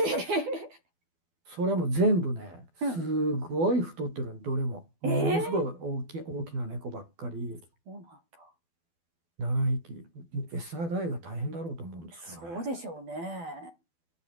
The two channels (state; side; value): late; left; 12 ms